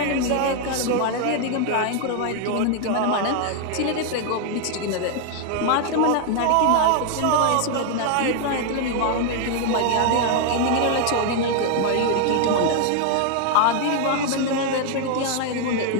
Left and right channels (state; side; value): different; both; correlation 0.00